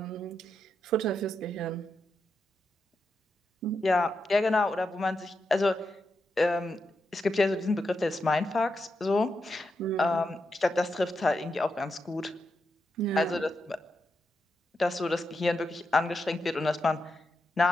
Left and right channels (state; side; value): normal; both; correlation 0.85